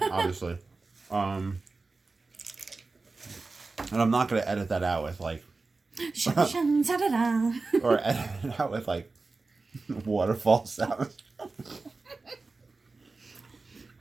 obviously. And I'm not going to edit that out with like... or edit it out with like waterfall sounds.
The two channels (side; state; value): left; quieter; 3.8 dB